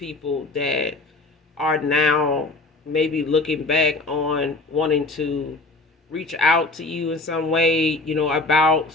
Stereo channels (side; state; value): right; quieter; 3.1 dB